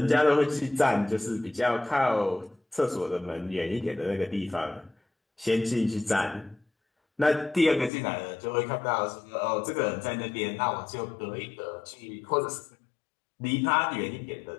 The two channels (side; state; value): right; drops out; at 7.9 s